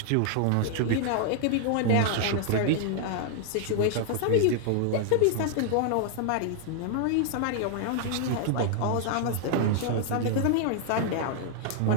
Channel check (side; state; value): both; different; correlation -0.01